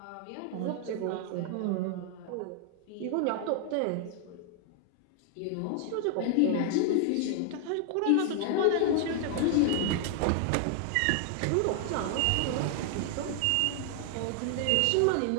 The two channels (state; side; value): different; both; correlation 0.00